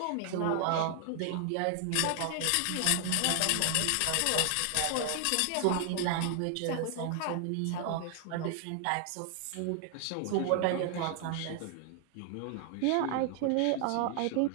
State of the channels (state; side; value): different; both; correlation 0.00